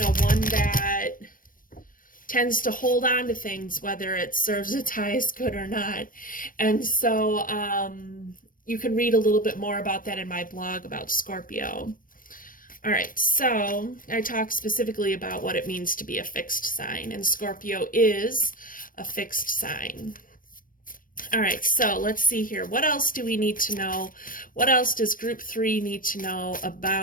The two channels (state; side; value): late; right; 0.40 ms